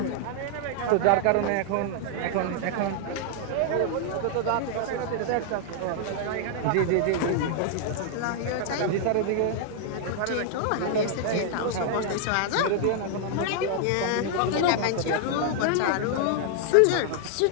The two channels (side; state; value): both; different; correlation 0.00